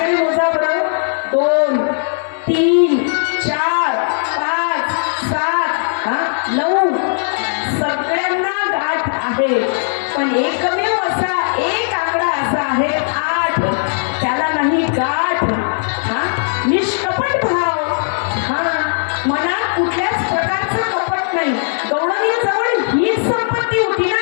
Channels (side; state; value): right; silent; digital silence